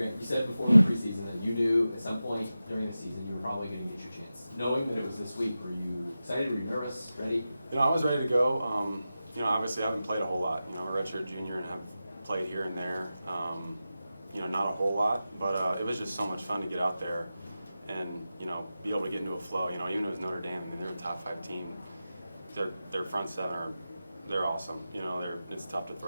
you said before the preseason that you knew at some point during the season you were probably going to get your chance. Knowing that it was this week, were you excited? Were you nervous? Ready? I was ready to go. Obviously I haven't played a whole lot. I'm a redshirt junior and have played here and there. Not a whole lot, but it was just so much fun to get out there and, be able to get into a flow. Even if it was Notre Dame, they're a top 5 team. Their front seven they're awesome. It's tough to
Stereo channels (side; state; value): both; inverted; correlation -0.93